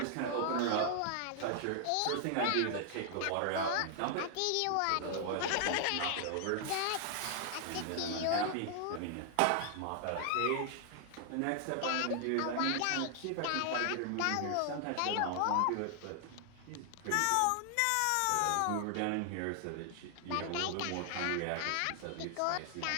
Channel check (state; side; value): different; both; correlation 0.00